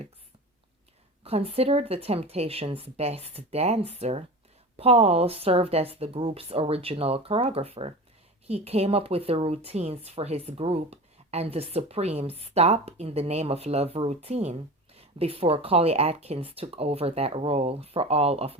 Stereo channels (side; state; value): both; normal; correlation 0.31